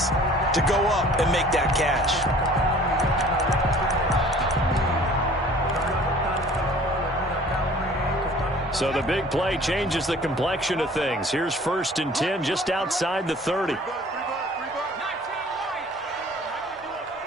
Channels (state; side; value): normal; both; correlation 0.50